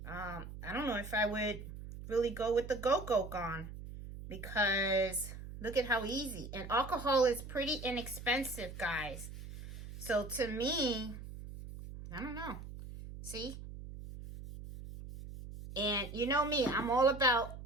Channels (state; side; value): noise; right; hum, 11 dB below the sound